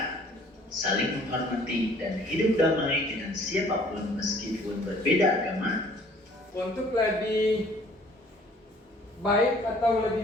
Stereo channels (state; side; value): normal; both; correlation 0.55